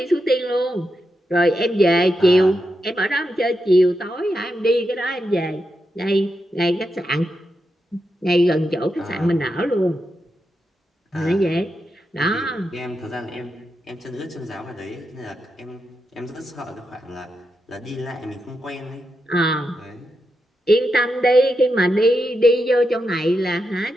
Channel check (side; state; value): both; normal; correlation 0.86